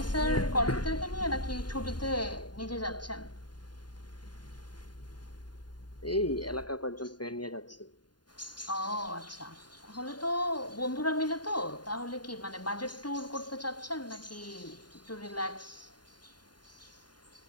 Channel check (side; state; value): right; late; 0.70 ms